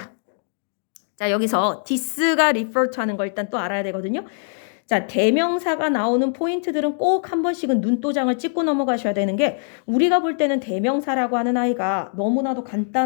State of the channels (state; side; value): silent; right; digital silence